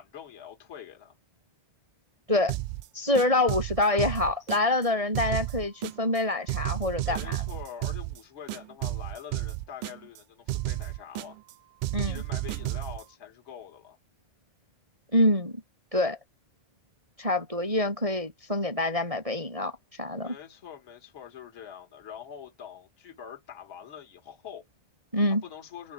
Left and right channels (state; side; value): late; left; 1.6 ms